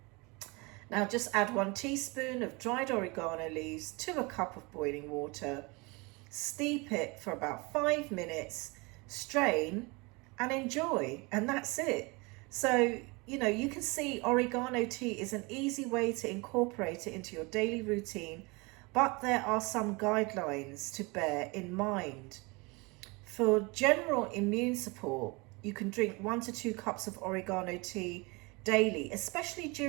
Now just add 1 teaspoon of dried oregano leaves to a cup of boiling water. Steep it for about 5 minutes, strain and enjoy, and that's it. So, you can see oregano tea is an easy way to incorporate it into your daily routine, but there are some guidelines to bear in mind. For general immune support, you can drink 1 to 2 cups of oregano tea daily, especially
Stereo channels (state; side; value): quieter; left; 27.0 dB